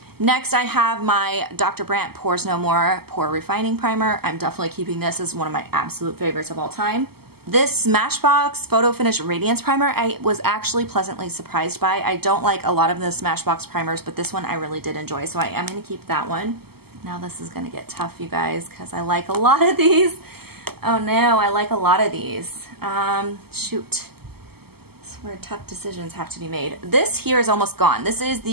Next, I have my Dr. Brandt Pores No More Pore Refining Primer. I'm definitely keeping this as one of my absolute favorites of all time. This Smashbox Photo Finish Radiance Primer, I was actually pleasantly surprised by. I don't like a lot of the Smashbox primers, but this one I really did enjoy, so I am going to keep that one. Now this is going to get tough, you guys, because I like a lot of these. Oh no, I like a lot of these. Shoot. Where tough decisions have to be made. This here is almost gone. This is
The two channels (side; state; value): left; late; 0.96 ms